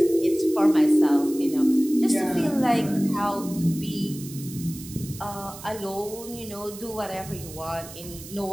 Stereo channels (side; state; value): right; noise; hiss, 15 dB below the sound